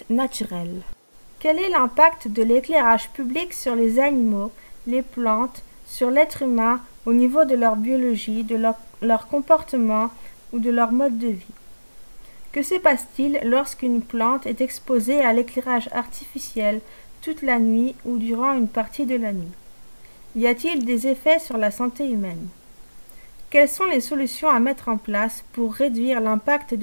naturels. Quel est l'impact de l'éclairage public sur les animaux, les plantes, sur l'être humain au niveau de leur biologie, de leur comportement ou de leur mode de vie? Que se passe-t-il lorsqu'une plante est exposée à l'éclairage artificiel toute la nuit ou durant une partie de la nuit? Y a-t-il des effets sur la santé humaine? Quelles sont les solutions à mettre en place pour réduire l'impact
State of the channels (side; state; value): both; inverted; correlation -1.00